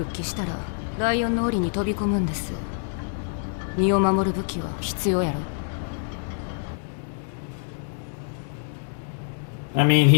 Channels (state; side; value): silent; right; digital silence